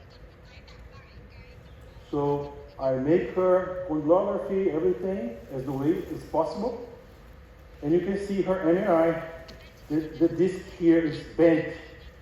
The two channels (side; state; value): both; identical; correlation 1.00